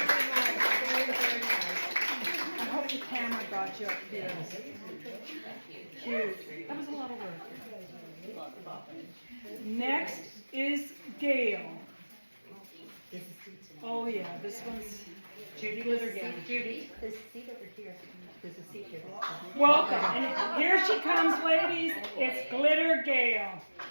Very nice. I hope the camera got you up here. Cute. That was a lot of work. Next is Gail. Oh yeah, this one's Judy Glitter Gail. Judy. There's a seat over here. There's a seat here. Welcome. And here she comes, ladies. It's Glitter Gail.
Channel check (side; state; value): both; inverted; correlation -1.00